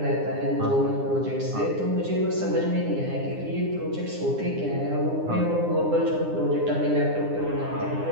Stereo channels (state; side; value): late; left; 9.8 ms